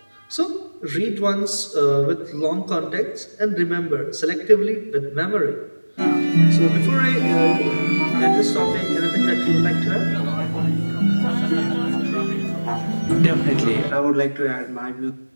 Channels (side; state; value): both; inverted; correlation -1.00